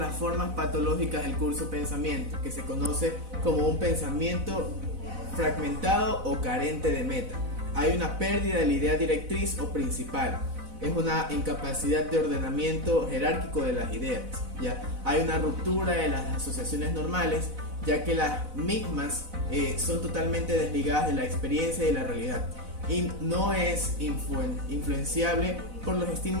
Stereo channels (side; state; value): left; late; 4.0 ms